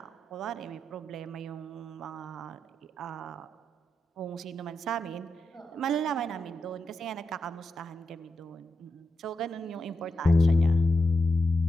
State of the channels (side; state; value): both; normal; correlation 0.87